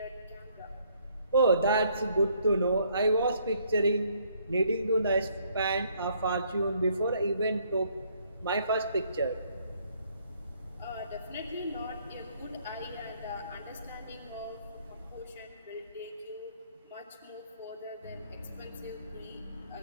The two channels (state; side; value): inverted; both; correlation -0.66